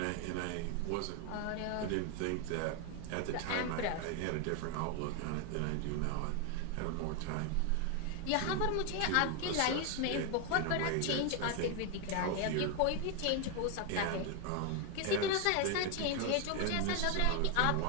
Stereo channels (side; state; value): both; different; correlation 0.01